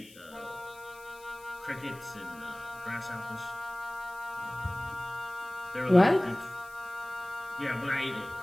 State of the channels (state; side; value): noise; left; hiss, 22 dB below the sound